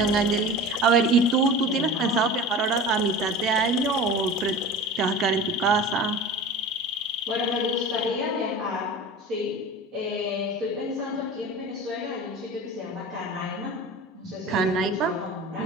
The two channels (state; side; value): normal; both; correlation 0.35